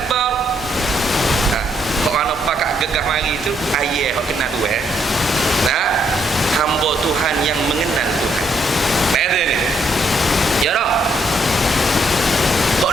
Pakak gegah mari tu ayah hok kenal tu hamba Tuhan yang mengenal Tuhan. Ada ni. Ya dah.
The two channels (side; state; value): both; normal; correlation 0.73